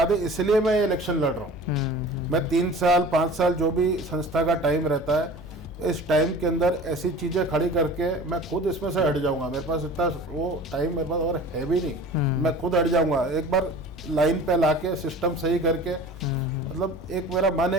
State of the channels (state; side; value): normal; both; correlation 0.41